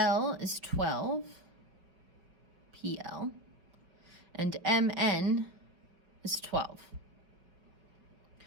is 12, PL, and MN is 12.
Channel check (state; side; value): late; left; 5.3 ms